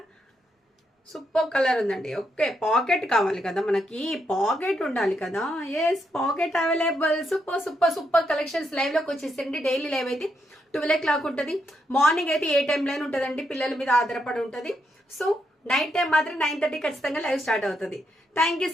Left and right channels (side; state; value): both; normal; correlation 0.80